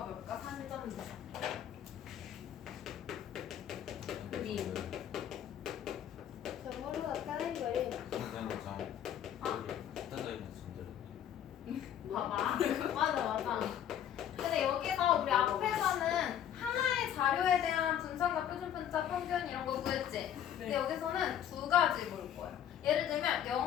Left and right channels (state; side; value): quieter; right; 10.1 dB